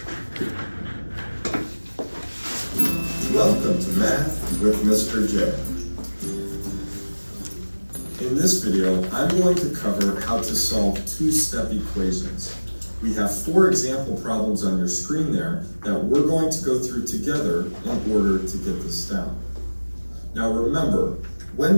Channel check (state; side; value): inverted; both; correlation -1.00